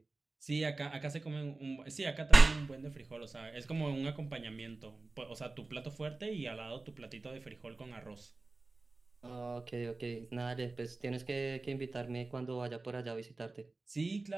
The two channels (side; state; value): left; quieter; 3.4 dB